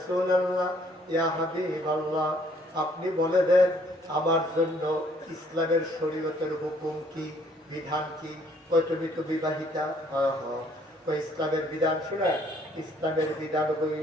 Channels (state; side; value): normal; both; correlation 0.63